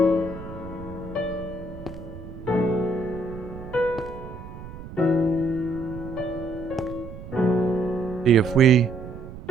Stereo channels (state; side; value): noise; right; rumble, 13 dB below the sound